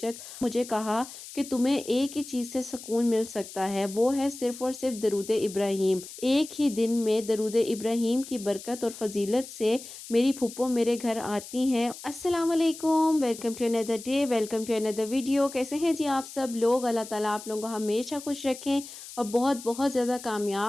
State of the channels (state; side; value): noise; left; hiss, 14 dB below the sound